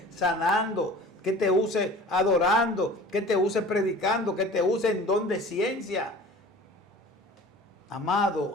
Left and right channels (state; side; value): normal; both; correlation 0.43